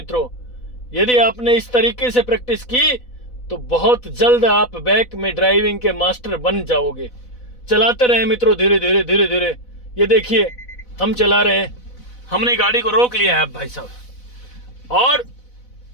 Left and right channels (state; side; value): late; right; 4.0 ms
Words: यदि आपने इस तरीके से प्रैक्टिस की तो बहुत जल्द आप बैक में ड्राइविंग के मास्टर बन जाओगे। चलाते रहे मित्रों, धीरे धीरे धीरे धीरे। ये देखिए हम चला रहे हैं, हमने गाड़ी को रोक लिया है अब भाई साहब। और